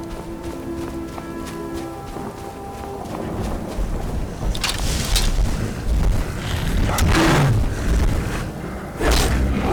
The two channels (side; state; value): both; identical; correlation 1.00